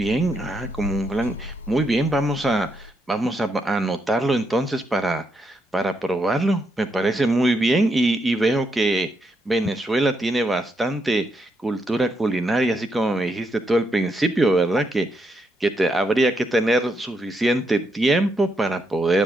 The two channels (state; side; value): normal; both; correlation 0.79